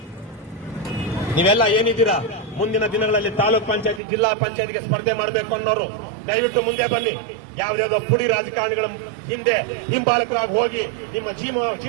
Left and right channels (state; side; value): drops out; left; at 4.0 s